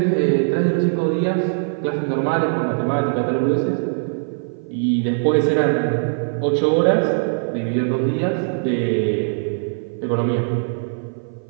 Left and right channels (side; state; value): left; silent; 56 dB below the other